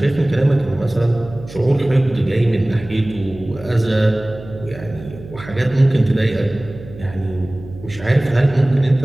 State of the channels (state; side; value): noise; right; hum, 16 dB below the sound